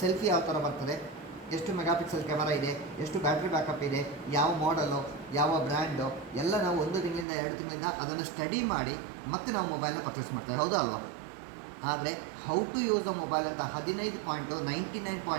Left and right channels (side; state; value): left; drops out; at 7.2 s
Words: ಸೆಲ್ಫಿ ಯಾವ ಥರ ಬರ್ತದೆ, ಎಷ್ಟು ಮೆಗಾಪಿಕ್ಸೆಲ್ ಕ್ಯಾಮರಾ ಇದೆ, ಎಷ್ಟು ಬ್ಯಾಟ್ರಿ ಬ್ಯಾಕಪ್ ಇದೆ, ಯಾವ ಮಾಡಲು, ಯಾವ ಬ್ರ್ಯಾಂಡು ಎಲ್ಲ ನಾವು 1 ತಿಂಗಳಿಂದ 2 ತಿಂಗಳಿಂದ ಅದನ್ನು ಸ್ಟಡಿ ಮಾಡಿ ಮತ್ತೆ ನಾವು ಮೊಬೈಲ್ನ ಪರ್ಚೇಸ್ ಮಾಡ್ತೇವೆ. ಹೌದಾ ಅಲ್ವಾ? ಆದರೆ how to use the mobile ಅಂತ